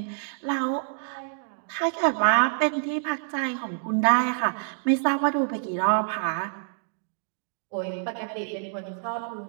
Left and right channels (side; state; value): left; silent; digital silence